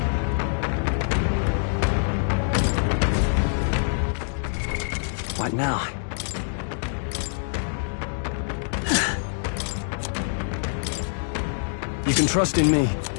What now? You can trust in me.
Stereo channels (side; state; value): right; silent; 62 dB below the other